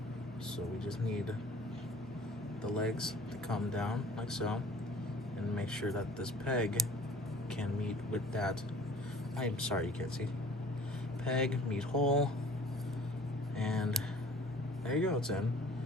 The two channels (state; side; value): normal; both; correlation 0.49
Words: So we just need the legs to come down like so, and make sure that this peg can meet with that. I'm sorry you can't see. Peg, meet hole, and there you go, it's in.